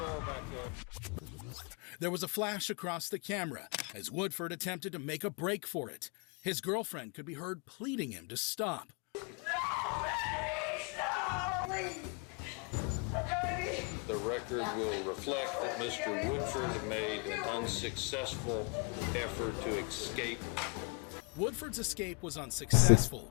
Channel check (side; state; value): right; quieter; 36.1 dB